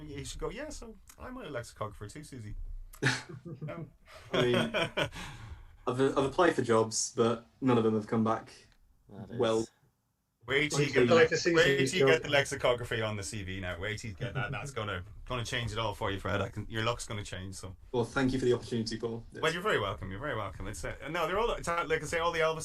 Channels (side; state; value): both; identical; correlation 1.00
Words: should go. Yeah, so I'm a lexicographer too, Susie. No. I mean, I've applied for jobs, but none of them have come back well. Wait till you get the lexicography on the CV now. Wait till you get that. That's gonna change it all for you, Fred. Your luck's gonna change. So. Well, thank you for the opportunity, Paul. Yes. Well, you're very welcome. You're very welcome. It's no, they're all like I say, all the